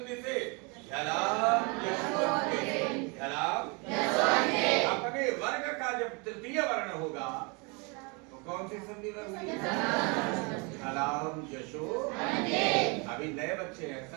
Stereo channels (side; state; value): left; quieter; 31.2 dB